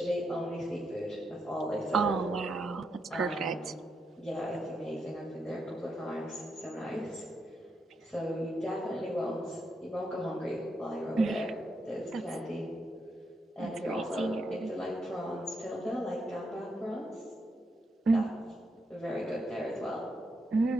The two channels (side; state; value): both; normal; correlation 0.81